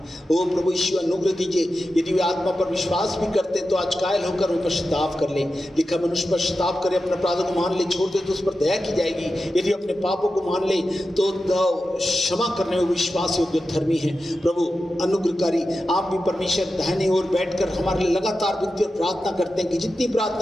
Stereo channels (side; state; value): both; normal; correlation 0.91